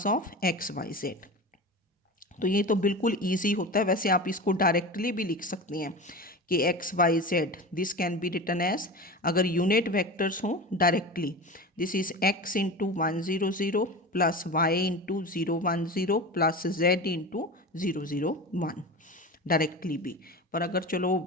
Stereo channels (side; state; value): both; normal; correlation 0.29